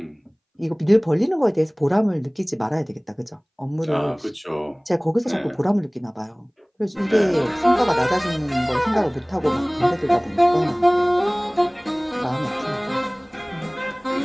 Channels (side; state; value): both; identical; correlation 1.00